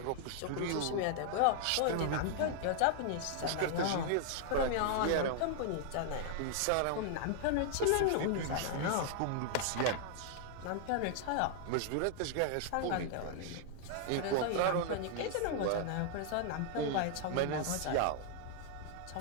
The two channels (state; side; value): different; both; correlation 0.00